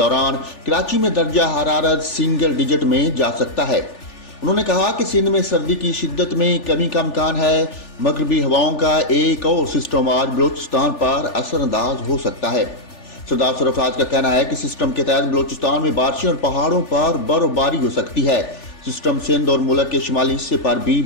कराची में दर्जा हरारत सिंगल डिजिट में जा सकता है। उन्होंने कहा कि सिंध में सर्दी की शिद्दत में कमी का इम्कान है। मगरबी हवाओं का एक और सिस्टम आज बलूचिस्तान पर असरअंदाज हो सकता है। सरदार सरफराज का कहना है कि सिस्टम के तहत बलूचिस्तान में बारिशें और पहाड़ों पर बर्फबारी हो सकती है। सिस्टम सिंध और मुल्क के शुमाली हिस्से पर भी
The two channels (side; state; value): right; late; 3.4 ms